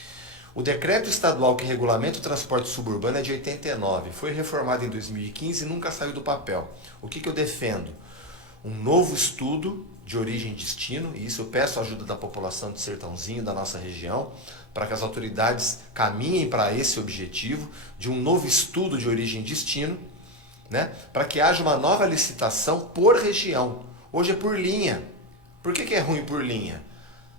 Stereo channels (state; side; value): normal; both; correlation 0.12